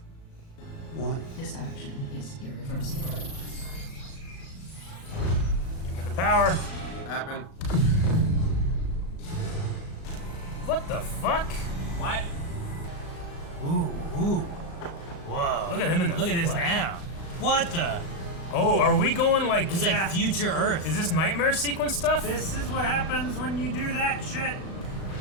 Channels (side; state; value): right; late; 37 ms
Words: This action is irreversible. Give me the power. Happen. What the fuck? What? Ooh, ooh. Whoa. Look at him in the Look at this flesh. now. What the? Oh, are we going like... It's like Yeah. future Earth. Is this nightmare sequence stuff? This is what happens when you do that shit.